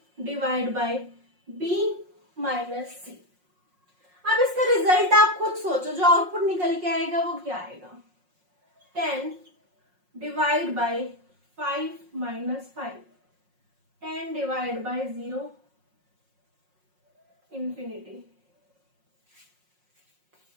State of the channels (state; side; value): late; left; 5.5 ms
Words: by b minus c. अब इसका रिजल्ट आप खुद सोचो, जो आउटपुट निकल के आएगा वो क्या आएगा? 10 divide by 5 minus 5, 10 divide by 0, infinity.